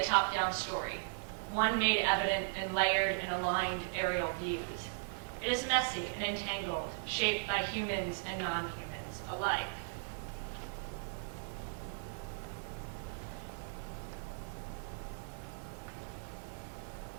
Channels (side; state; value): left; silent; 53 dB below the other